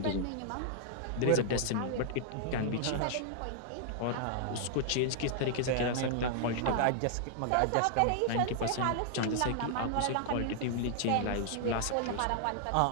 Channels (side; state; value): both; different; correlation -0.01